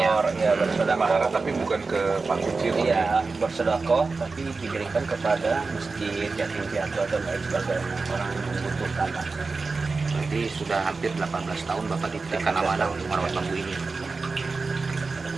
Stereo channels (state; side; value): quieter; left; 4.1 dB